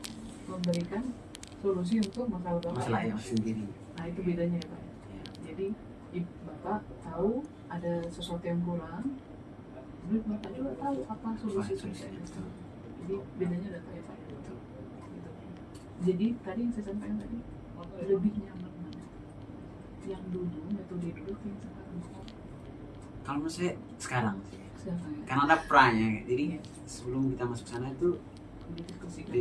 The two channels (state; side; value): identical; both; correlation 1.00